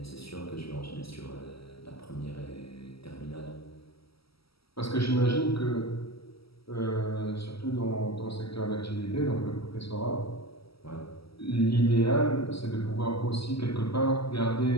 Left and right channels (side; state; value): right; late; 0.76 ms